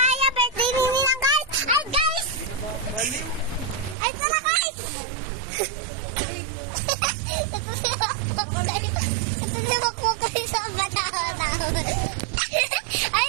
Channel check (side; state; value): left; drops out; at 4.0 s